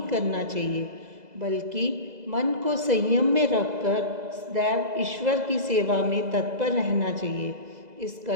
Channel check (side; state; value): left; late; 2.0 ms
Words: करना चाहिए, बल्कि मन को संयम में रखकर सदैव ईश्वर की सेवा में तत्पर रहना चाहिए। इस